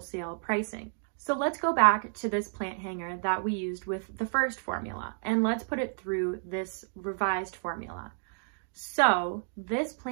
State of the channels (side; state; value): left; silent; 57 dB below the other